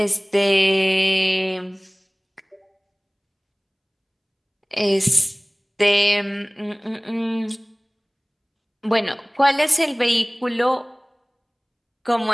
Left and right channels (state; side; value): identical; both; correlation 1.00